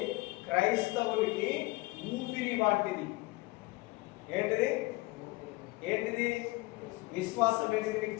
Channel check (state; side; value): quieter; right; 21.8 dB